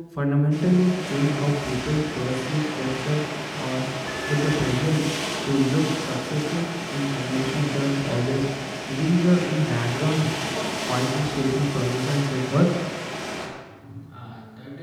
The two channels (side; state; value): both; identical; correlation 1.00